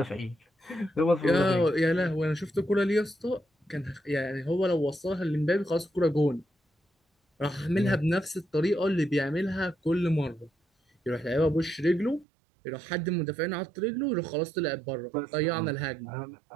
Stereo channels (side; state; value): left; drops out; at 12.2 s